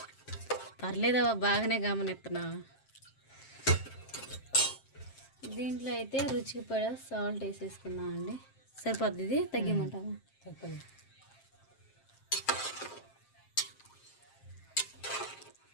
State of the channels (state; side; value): late; right; 7.5 ms